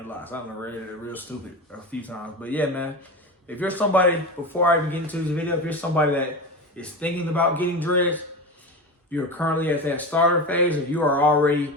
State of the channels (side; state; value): both; normal; correlation 0.24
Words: locks. I don't know, read it real stupid a few times. But yeah, man. If you're somebody, before I even get into this video, if you're somebody that is thinking about getting dreads, you're currently at that starter phase, or you are already